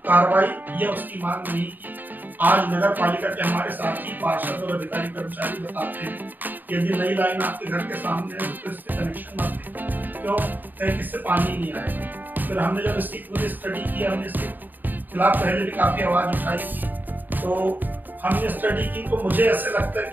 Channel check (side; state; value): left; late; 0.088 ms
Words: कार्रवाई या उसकी मांग नहीं की। आज नगर पालिका के हमारे साथी पार्षद और अधिकारी कर्मचारी बताते हैं कि यदि नई लाइन आपके घर के सामने है तो इसके कनेक्शन मत लें। क्यों? इससे पानी नहीं आएगा। फिर हमने जब इसकी पूरी स्टडी की, हमने इसके खिलाफ पहले भी काफी आवाज उठाई थी, तो हमने स्टडी की, तो मुझे ऐसे लगता है